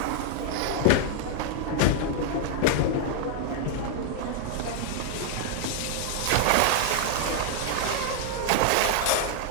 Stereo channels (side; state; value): both; different; correlation 0.00